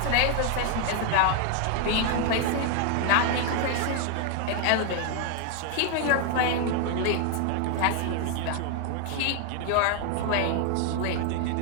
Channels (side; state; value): both; different; correlation 0.00